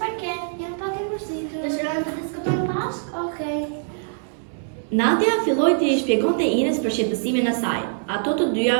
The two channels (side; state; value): left; silent; 63 dB below the other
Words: ke? Jam pak e mërzitur. Dëshiron të diskutojmë bashkë? Okej. Nadia filloi të i shpjegonte Inës për shqetësimin e saj. Ato të dyja